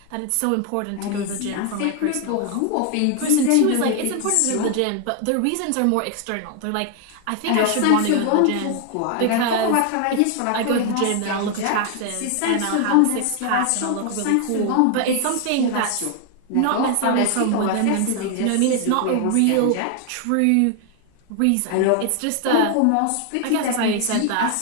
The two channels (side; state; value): both; different; correlation 0.00